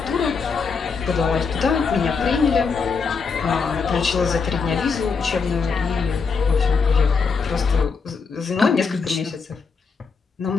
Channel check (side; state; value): right; quieter; 5.2 dB